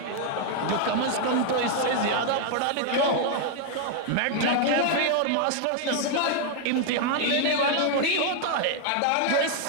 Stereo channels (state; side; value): different; both; correlation 0.00